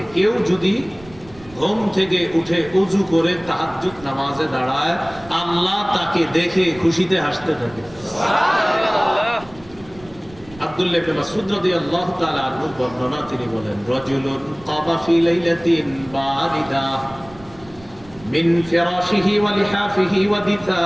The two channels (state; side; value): noise; right; rumble, 22 dB below the sound